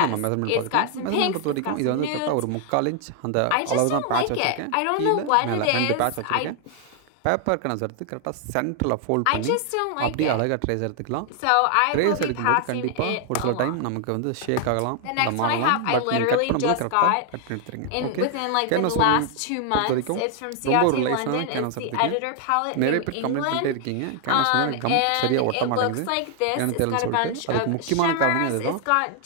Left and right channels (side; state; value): both; different; correlation 0.00